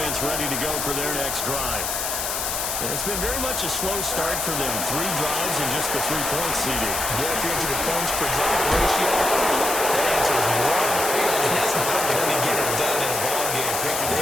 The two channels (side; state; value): left; noise; hiss, 2 dB below the sound